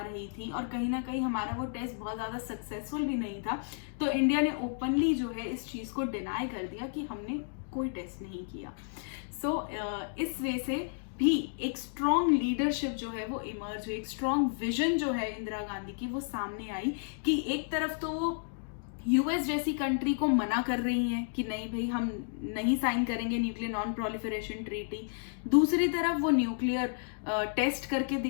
थी और कहीं ना कहीं हमारा वो टेस्ट बहुत ज़्यादा सक्सेसफुल भी नहीं था, तो इंडिया ने ओपनली जो है इस चीज़ को डिनाई कर दिया कि हमने कोई टेस्ट नहीं किया। सो इस वे से भी एक स्ट्रॉन्ग लीडरशिप जो है वो इमर्ज हुई, एक स्ट्रॉन्ग विजन जो है इंदिरा गांधी की वो सामने आई कि एक तरफ तो वो यूएस जैसी कंट्री को मना कर रही हैं कि नहीं भाई हम नहीं साइन करेंगे न्यूक्लियर नॉन प्रोलिफरेशन ट्रीटी, दूसरी तरफ वो न्यूक्लियर टेस्ट करके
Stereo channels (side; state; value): right; silent; digital silence